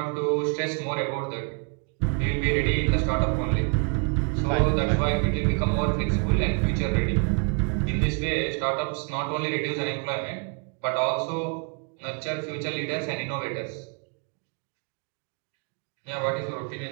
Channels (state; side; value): quieter; left; 38.3 dB